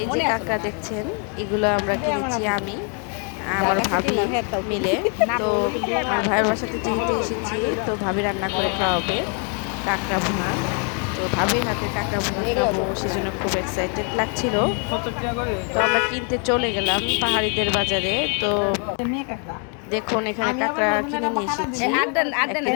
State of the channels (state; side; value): quieter; right; 39.3 dB